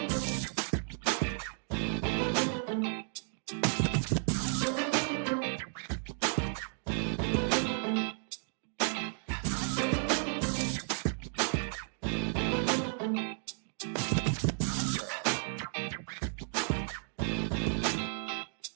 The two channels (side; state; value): left; silent; 56 dB below the other